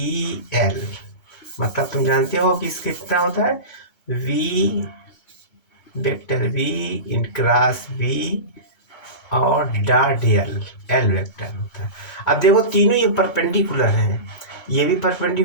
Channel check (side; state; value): right; late; 2.2 ms